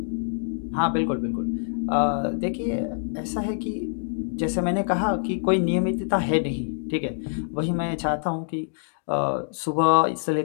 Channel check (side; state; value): right; silent; digital silence